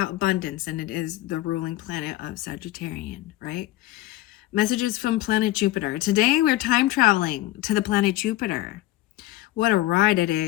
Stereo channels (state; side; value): quieter; right; 16.5 dB